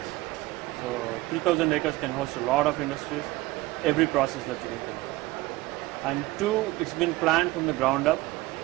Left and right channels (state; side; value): quieter; left; 19.4 dB